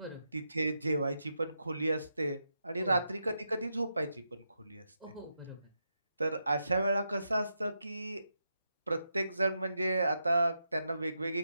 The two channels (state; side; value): inverted; both; correlation -0.85